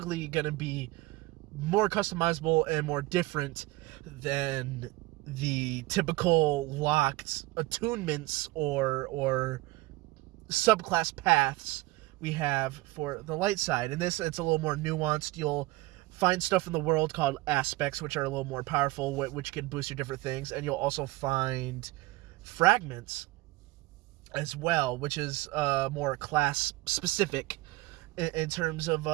going to be more customizable and more different than the typical locked attunements or subclass paths we have for the light side. And this, it's a little more nuanced. You'll find stuff in the world called aspects, which are a little more powerful, which can boost your different things, and you'll also find fragments as well, which is more class specific in terms of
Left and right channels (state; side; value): quieter; left; 20.0 dB